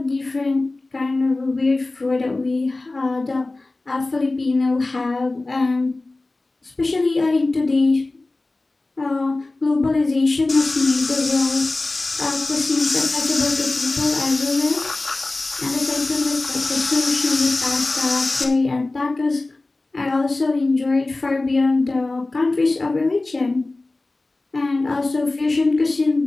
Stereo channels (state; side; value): quieter; right; 3.1 dB